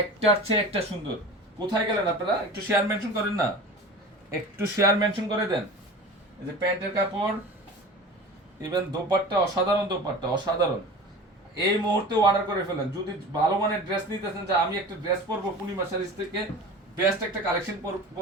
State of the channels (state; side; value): normal; both; correlation 0.36